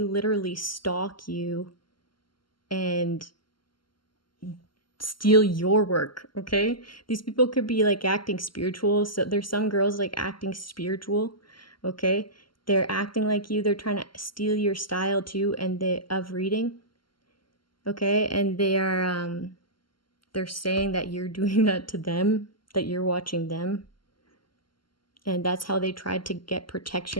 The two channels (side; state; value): right; late; 0.72 ms